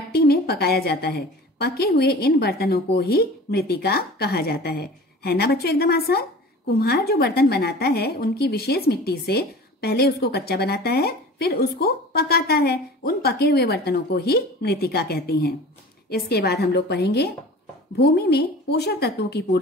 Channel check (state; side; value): normal; both; correlation 0.40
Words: में पकाया जाता है। पके हुए इन बर्तनों को ही मृत्तिका कहा जाता है ना बच्चों, एकदम आसान। कुम्हार जो बर्तन बनाता है उनकी विशेष मिट्टी से पहले उसको कच्चा बनाता है, फिर उसको पकाता है। उन पके हुए बर्तनों को ही मृत्तिका कहते हैं। इसके बाद हम लोग पढ़ेंगे भूमि में पोषक तत्वों की